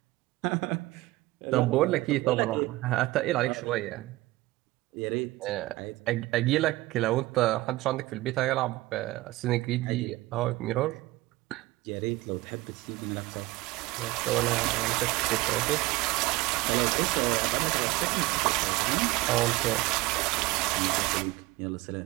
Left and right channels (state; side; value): quieter; left; 19.3 dB